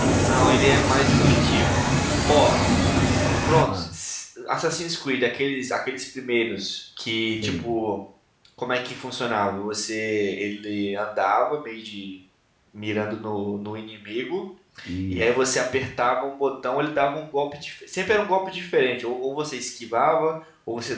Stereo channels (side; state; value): both; identical; correlation 1.00